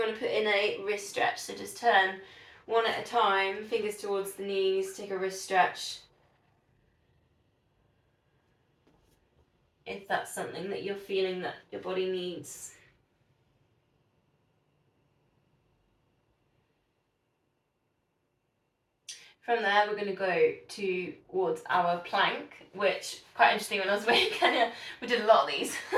want to put in a wrist stretch, so just turn one at a time, fingers towards the knees, take a wrist stretch. If that's something that you're feeling that your body needs. From there, we're going to go towards our plank, which quite interesting. When I was away in Kenya, we did a lot of these.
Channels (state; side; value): identical; both; correlation 1.00